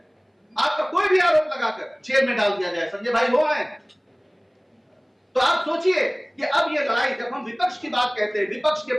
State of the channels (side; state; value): both; identical; correlation 1.00